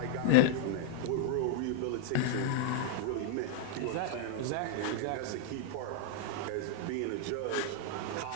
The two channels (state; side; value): different; both; correlation 0.00